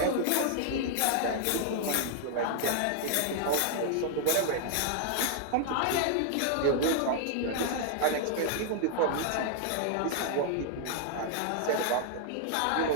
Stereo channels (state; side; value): different; both; correlation -0.01